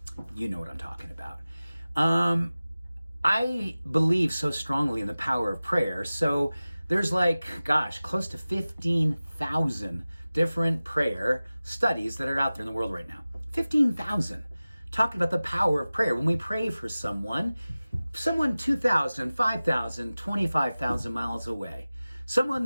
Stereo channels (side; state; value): both; inverted; correlation -0.97